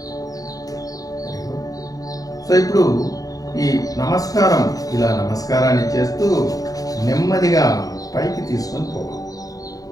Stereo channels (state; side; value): late; right; 0.17 ms